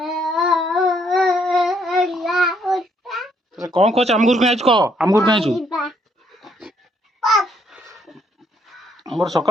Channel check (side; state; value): both; normal; correlation 0.70